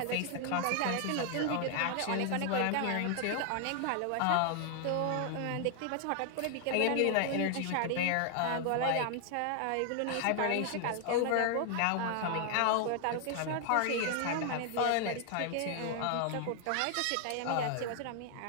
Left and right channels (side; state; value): both; different; correlation 0.00